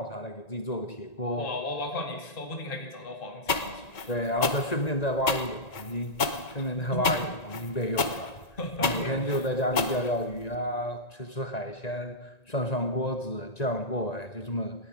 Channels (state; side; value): late; right; 1.9 ms